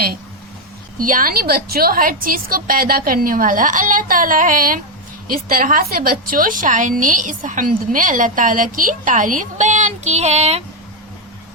यानी बच्चों हर चीज को पैदा करने वाला अल्लाह ताला है। इस तरह से बच्चों शायर ने इस हम्द में अल्लाह ताला की तारीफ बयान की है।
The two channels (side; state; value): both; normal; correlation 0.03